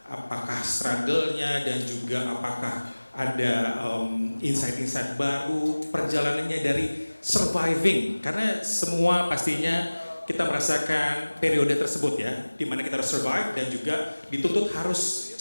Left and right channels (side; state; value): both; inverted; correlation -1.00